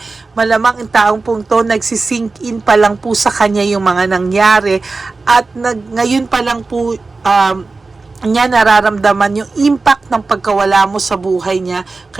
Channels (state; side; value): quieter; left; 3.8 dB